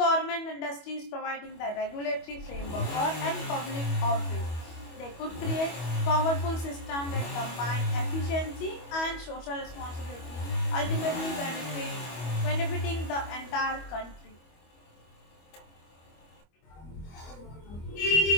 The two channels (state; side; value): late; right; 25 ms